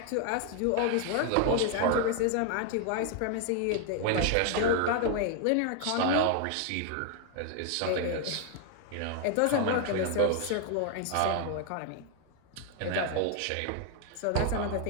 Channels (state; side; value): different; both; correlation 0.00